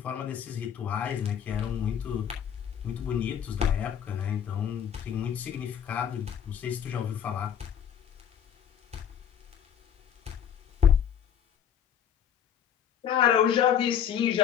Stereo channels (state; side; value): quieter; right; 8.8 dB